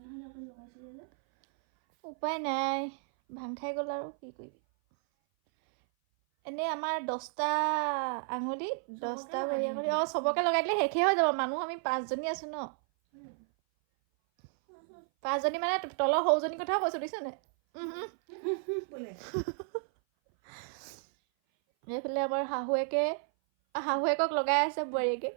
আপুনি লগাইছিলে যে উপায় নাই ভাং খাই গ'ল আৰু কি কৰিবি এনেই আমাৰ 10টা আঙুলি 10টা ভৰি আঙুলি চবকে লগাই দিলে শেষেই হৈ যাব মানুহ আমি 5জনী আছো ন 5জনী মানে তলৰ সৰুজনীৰ কথাও কৈছো দিছ নে বোলে এইফালে আমাৰ শাহুৱেকক লগাই আছে বোৱাৰীয়েকে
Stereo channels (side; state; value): left; silent; 56 dB below the other